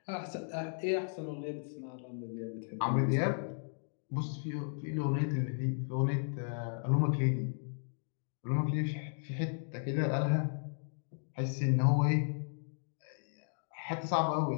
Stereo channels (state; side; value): silent; right; digital silence